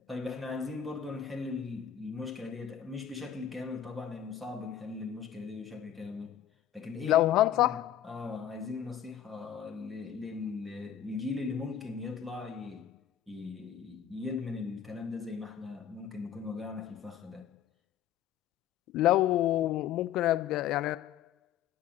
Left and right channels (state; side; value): quieter; right; 9.9 dB